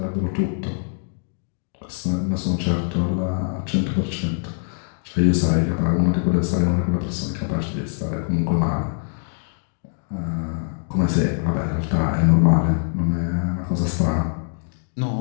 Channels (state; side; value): silent; right; digital silence